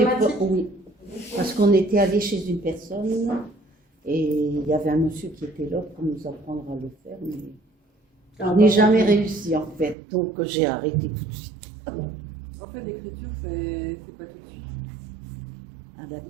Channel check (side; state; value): left; drops out; at 10.0 s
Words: automatique? pas, oui. Parce qu'on était allé chez une personne et il y avait un monsieur qui était là pour nous apprendre à le faire, mais on n'est jamais réussi en fait, donc j'ai arrêté tout de suite. En fait, l'écriture, c'est pas tout de suite. Ah,